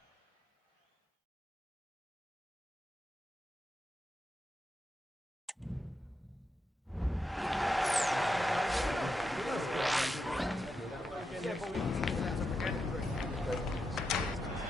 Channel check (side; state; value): both; normal; correlation 0.86